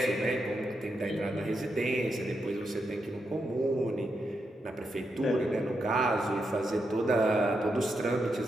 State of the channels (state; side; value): normal; both; correlation 0.84